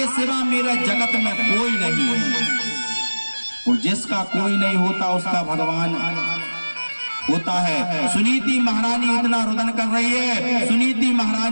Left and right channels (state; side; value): inverted; both; correlation -1.00